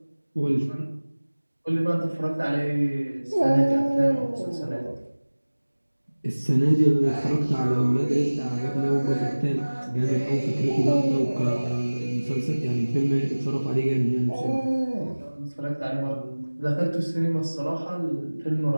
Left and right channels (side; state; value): both; inverted; correlation -1.00